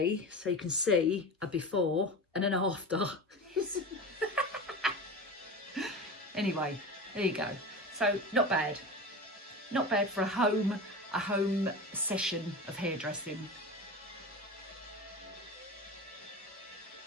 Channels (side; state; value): both; normal; correlation 0.29